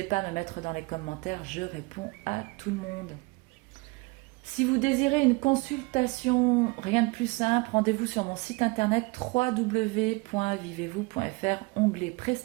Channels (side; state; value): left; quieter; 26.3 dB